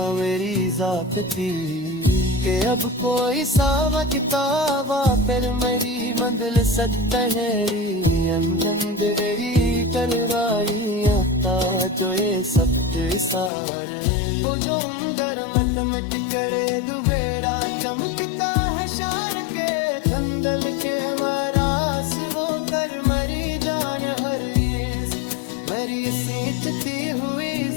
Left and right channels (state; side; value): drops out; right; at 13.5 s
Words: मेरी जात थी कि अब कोई सावा किताबा फिर मेरी मंजिल सतहरी अंदरी करवाई आता जो ये सब सारे वो जो अंदर मत मत करे दुबेरा चमकता है शार के धंधल के मरास वो कर मरी जान हर मेरी सींचती हुई